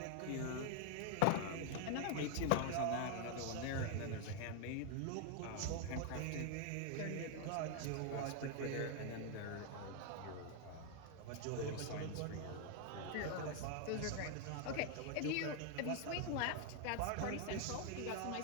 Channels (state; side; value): different; both; correlation 0.00